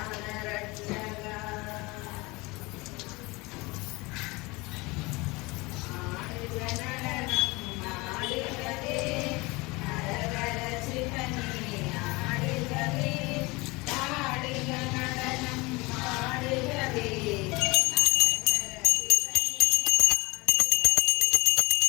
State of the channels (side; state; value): right; quieter; 24.2 dB